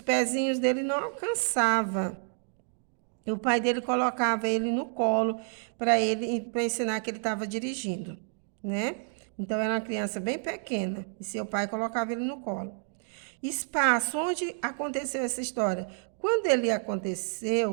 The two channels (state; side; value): silent; left; 58 dB below the other